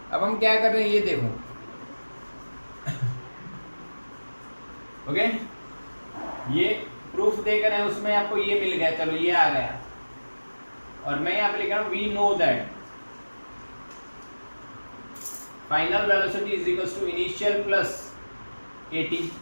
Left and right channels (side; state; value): both; inverted; correlation -1.00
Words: अब हम क्या कर रहे हैं ये देखो। ओके, ये प्रूफ देकर है उसमें आपको ये मिल गया, चलो ये आ गया, और मैं यहाँ पे लिख रहा हूँ we know that final velocity is equals to initial plus at,